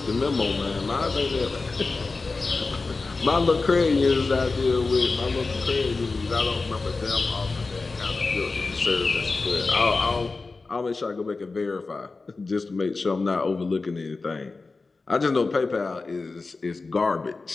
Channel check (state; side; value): quieter; right; 3.9 dB